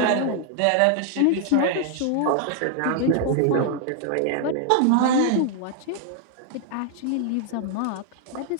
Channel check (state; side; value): different; both; correlation 0.00